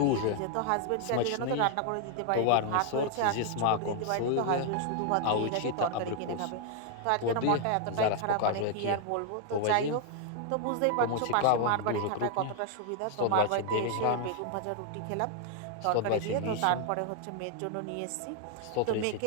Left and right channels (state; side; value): different; both; correlation 0.00